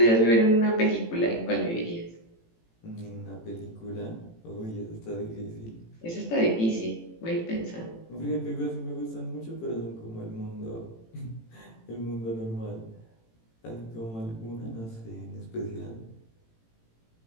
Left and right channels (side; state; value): right; late; 18 ms